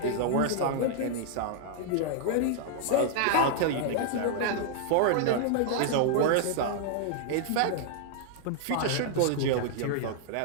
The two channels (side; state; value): both; different; correlation -0.01